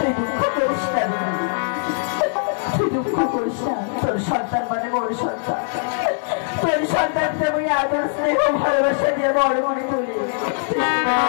দুঃখ করিস না, তুই দুঃখ করিস না। তোর সন্তান মানে বড় সন্তান, তোর সন্তানকে আমি আদর স্নেহ ভালোবাসা দিয়ে বড় করে তুলি।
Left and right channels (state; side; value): silent; right; digital silence